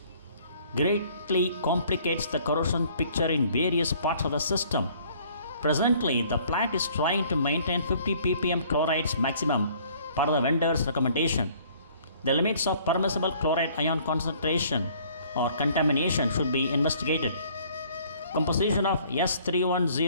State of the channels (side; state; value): both; inverted; correlation -0.58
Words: greatly complicates the corrosion picture in various parts of the system. Presently, the plant is trying to maintain 50 ppm chlorides maximum per the vendor's recommendation. The limits of permissible chloride ion concentration or contamination should be investigated. Composition of